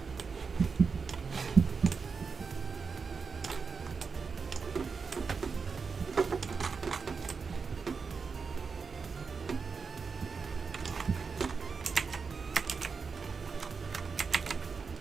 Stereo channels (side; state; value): left; quieter; 5.2 dB